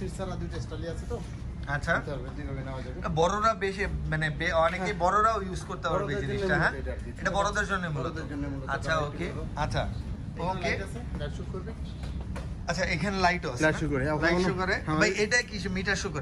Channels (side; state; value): both; identical; correlation 1.00